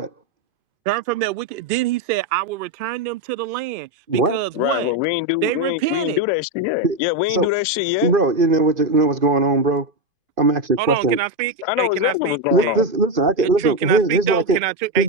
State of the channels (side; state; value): left; late; 2.5 ms